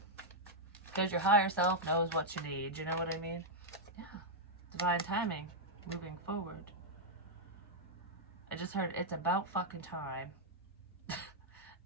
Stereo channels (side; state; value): both; normal; correlation -0.04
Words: Because your higher self knows what you need. You know what I mean? Yeah. Divine timing. Moving forward. I just heard it's about fucking time.